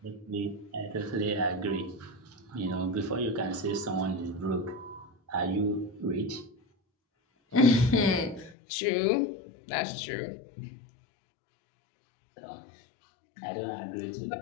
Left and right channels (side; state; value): right; drops out; at 8.6 s